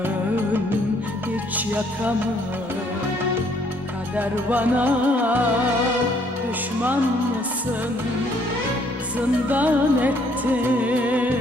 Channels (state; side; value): normal; both; correlation 0.65